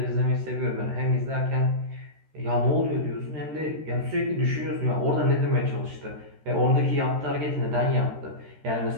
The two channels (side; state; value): left; late; 13 ms